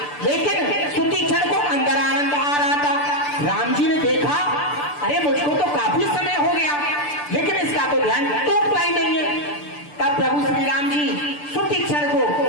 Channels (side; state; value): right; late; 6.8 ms